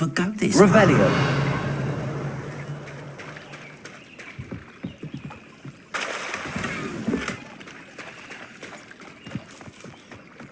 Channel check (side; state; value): both; identical; correlation 1.00